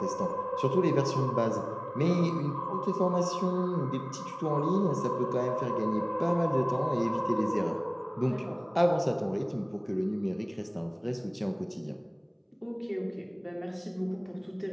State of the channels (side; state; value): both; identical; correlation 1.00